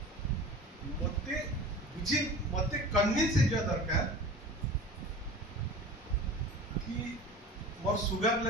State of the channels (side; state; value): both; normal; correlation 0.38